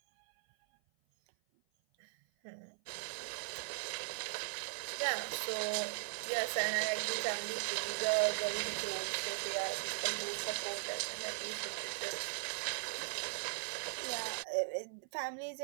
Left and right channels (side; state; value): left; silent; 52 dB below the other